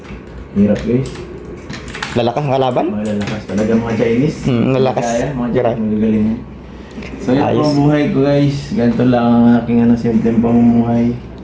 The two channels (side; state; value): both; identical; correlation 1.00